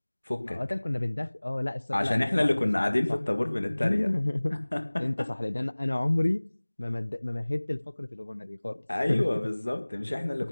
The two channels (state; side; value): inverted; both; correlation -1.00